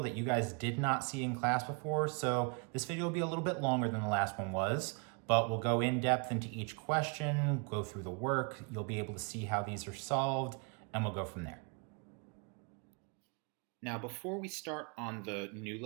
that you guys did not see in class before, so this video will be a little bit longer than the last one was, but we'll go in depth into each question, go through the work, you'll be able to see how these are solved, and we'll go from there. Now, before we start on the new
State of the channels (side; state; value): left; quieter; 34.8 dB